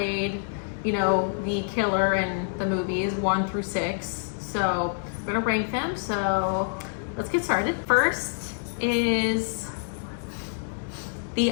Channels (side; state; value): right; silent; 60 dB below the other